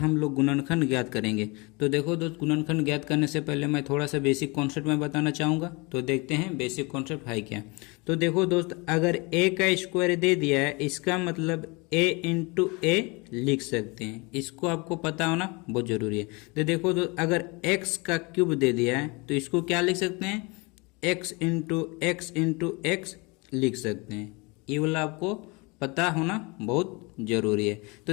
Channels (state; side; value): quieter; right; 27.7 dB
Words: लोग गुणनखंड ज्ञात करेंगे। तो देखो दोस्त, गुणनखंड ज्ञात करने से पहले मैं थोड़ा सा बेसिक कॉन्सेप्ट में बताना चाहूँगा। तो देखते हैं बेसिक कॉन्सेप्ट है क्या। तो देखो दोस्त, अगर ए का स्क्वायर दे दिया है, इसका मतलब ए इंटू ए लिख सकते हैं। इसको आपको पता होना बहुत जरूरी है। तो देखो दोस्त, अगर एक्स का क्यूब दे दिया है तो इसको क्या लिख सकते हैं, एक्स इंटू एक्स लिख सकते हैं। ये वाला आपको पता होना बहुत जरूरी है।